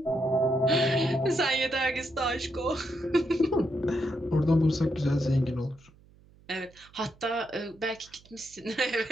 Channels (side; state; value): right; noise; hum, 27 dB below the sound